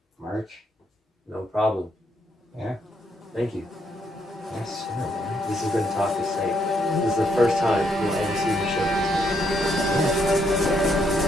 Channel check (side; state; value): both; normal; correlation 0.74